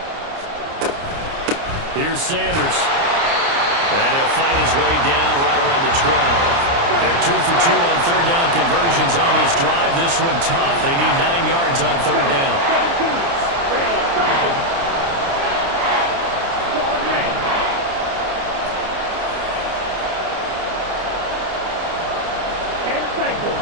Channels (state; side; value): late; left; 29 ms